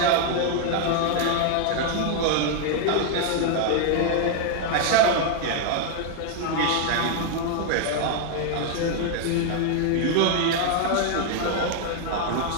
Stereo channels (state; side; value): different; both; correlation 0.00